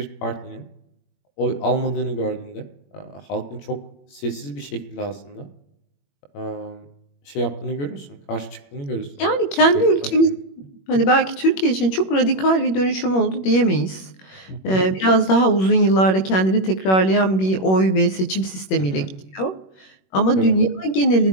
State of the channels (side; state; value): right; late; 21 ms